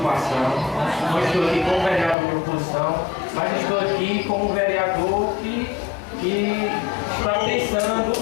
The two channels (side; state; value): right; drops out; at 2.1 s